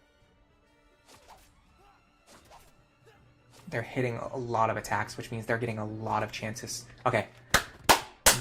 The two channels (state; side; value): identical; both; correlation 1.00